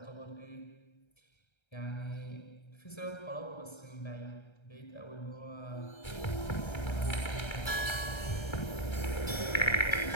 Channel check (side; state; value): right; late; 1.3 ms